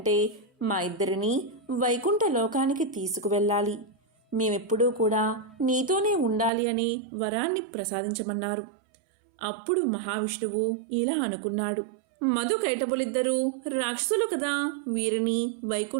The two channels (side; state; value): left; drops out; at 6.5 s